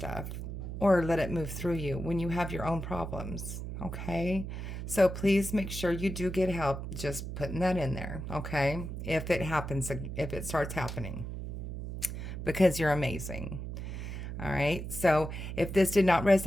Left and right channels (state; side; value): noise; right; hum, 6 dB below the sound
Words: or let it move through you when you have your own problems. Okay? So please make sure you do get help. Just putting that in there. Okay? If it happens, if it starts happening, because you're amazing. All right. So if this did not